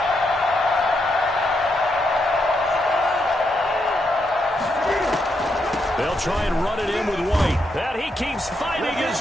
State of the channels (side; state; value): both; normal; correlation 0.80